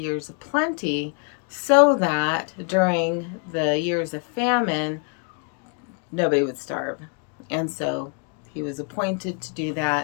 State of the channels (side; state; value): right; quieter; 39.6 dB